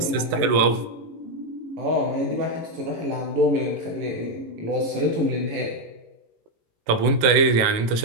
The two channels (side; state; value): left; late; 18 ms